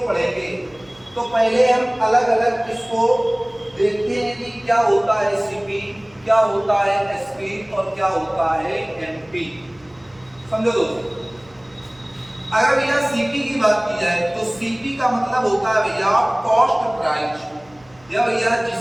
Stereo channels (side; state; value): right; noise; hum, 29 dB below the sound